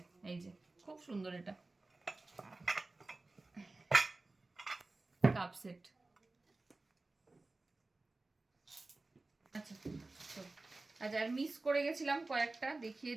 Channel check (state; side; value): quieter; left; 3.2 dB